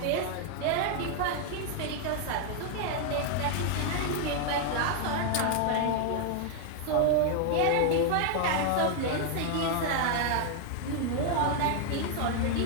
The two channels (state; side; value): different; both; correlation 0.00